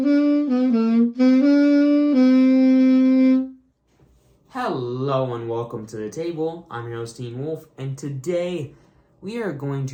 and welcome to the table. I'm your host, Teen Wolf, and today we are going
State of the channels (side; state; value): both; identical; correlation 1.00